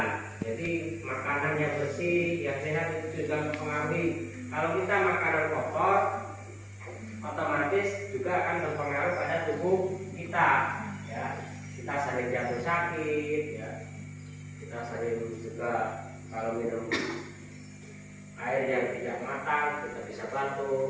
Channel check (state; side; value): identical; both; correlation 1.00